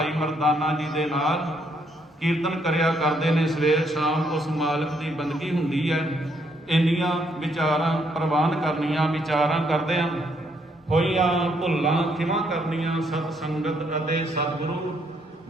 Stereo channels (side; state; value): both; normal; correlation 0.72